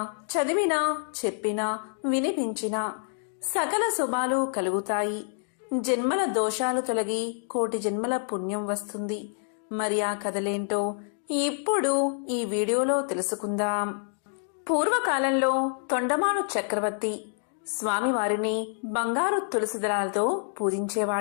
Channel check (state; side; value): silent; right; digital silence